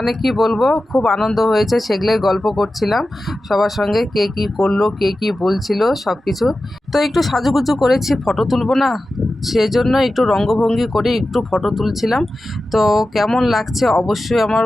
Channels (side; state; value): both; normal; correlation 0.94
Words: কি বলবো, খুব আনন্দ হয়েছে, সেগুলোই গল্প করছিলাম সবার সঙ্গে, কে কী করলো কে কী বলছিল সব কিছু। তো একটু সাজুগুজু করেছি, ফটো তুলবো না, সেজন্য একটু রঙ্গভঙ্গি করে একটু ফটো তুলছিলাম। তো কেমন লাগছে অবশ্যই